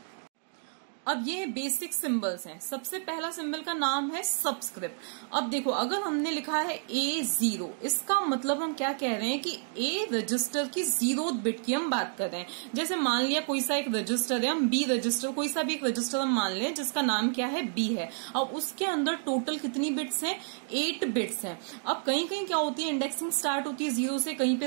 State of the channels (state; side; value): silent; left; 58 dB below the other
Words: अब ये बेसिक सिंबल्स हैं। सबसे पहला सिंबल का नाम है सबस्क्रिप्ट। अब देखो, अगर हमने लिखा है A0, इसका मतलब हम क्या कह रहे हैं कि A रजिस्टर की 0th बिट की हम बात कर रहे हैं। जैसे मान लिया कोई सा एक रजिस्टर है, हम B रजिस्टर, कोई सा भी एक रजिस्टर हम मान लें जिसका नाम क्या है? B है। अब उसके अंदर टोटल कितनी बिट्स हैं? 8 बिट्स हैं। अब कहीं कहीं क्या होती है? इंडेक्सिंग स्टार्ट होती है 0 से, कहीं